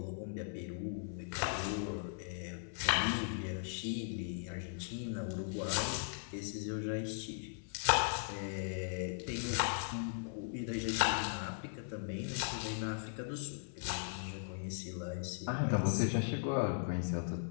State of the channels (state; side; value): silent; right; 52 dB below the other